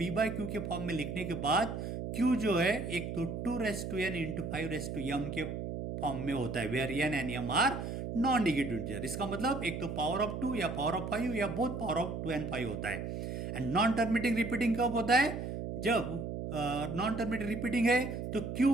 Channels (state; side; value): noise; right; hum, 5 dB below the sound